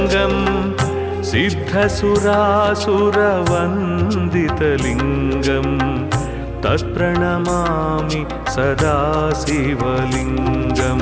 सिद्धसुरासुरवन्दितलिङ्गम् तत्प्रणमामि सदा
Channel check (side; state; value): both; identical; correlation 1.00